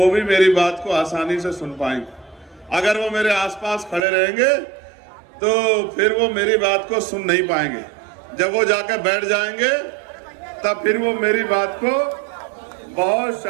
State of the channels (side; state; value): left; drops out; at 4.0 s